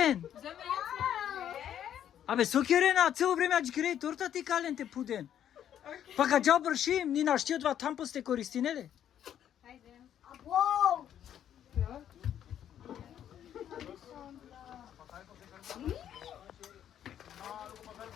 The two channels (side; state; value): right; quieter; 10.1 dB